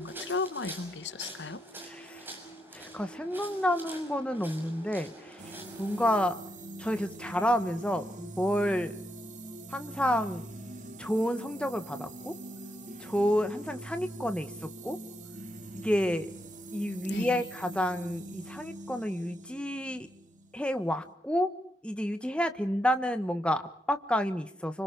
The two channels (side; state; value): both; normal; correlation 0.82